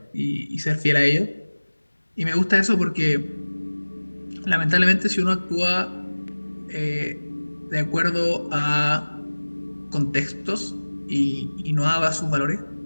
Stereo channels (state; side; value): inverted; both; correlation -1.00